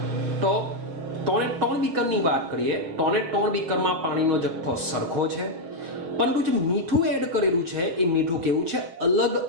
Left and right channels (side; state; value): left; late; 6.0 ms